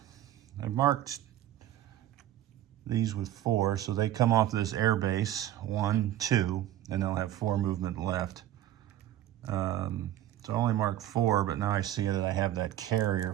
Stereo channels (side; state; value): left; quieter; 12.9 dB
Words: marked these with 4, so they come off this air base, 1, 2, and they'll have 4 movement left. So I only marked 4, but now I see that I have that carrier